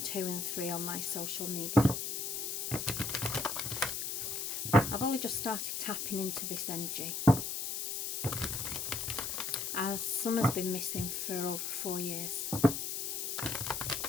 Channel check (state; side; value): noise; left; hiss, 2 dB below the sound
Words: and 3 on my social media. I've only just started tapping into this energy, as Summer's been missing for over 4 years.